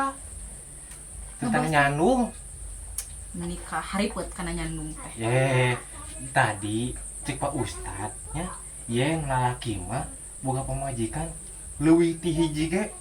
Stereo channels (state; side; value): identical; both; correlation 1.00